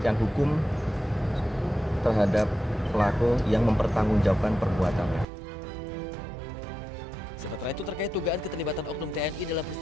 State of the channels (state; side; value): normal; both; correlation 0.88